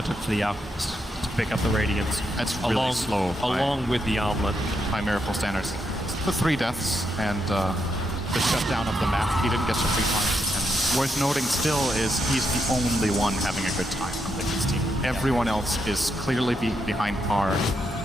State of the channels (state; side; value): normal; both; correlation 0.81